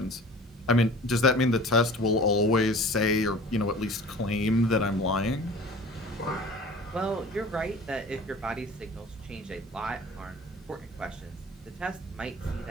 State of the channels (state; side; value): normal; both; correlation 0.43